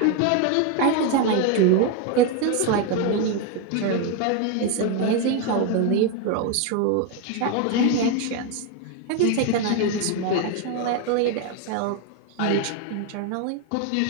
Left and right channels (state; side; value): different; both; correlation 0.02